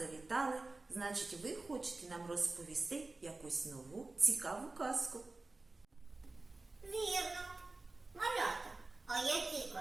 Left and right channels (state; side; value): quieter; left; 3.3 dB